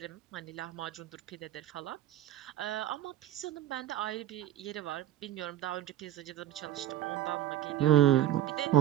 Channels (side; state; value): left; quieter; 12.5 dB